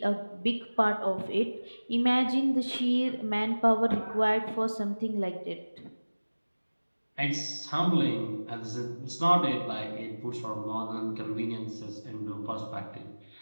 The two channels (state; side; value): inverted; both; correlation -1.00